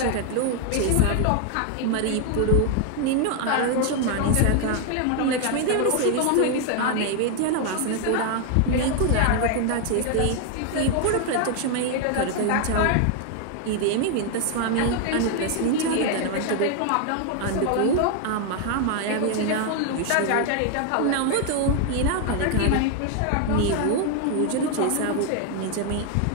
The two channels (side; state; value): both; different; correlation 0.00